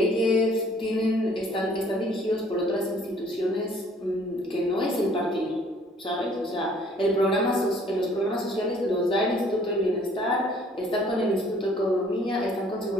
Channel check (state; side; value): normal; both; correlation 0.58